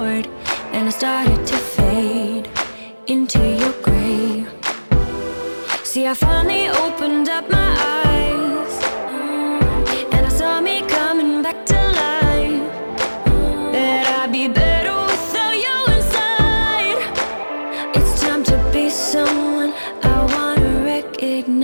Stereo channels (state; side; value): inverted; both; correlation -1.00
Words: and I started to fade into your grey. See, I finally opened up my eyes, and I saw me coming back to life. That I'd be better without you inside. It's time to be someone I wanna